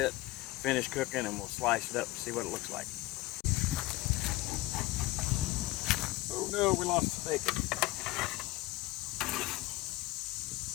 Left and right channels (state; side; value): quieter; right; 18.9 dB